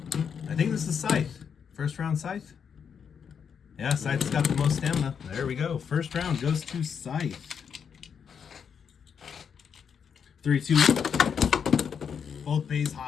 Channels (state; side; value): quieter; right; 7.1 dB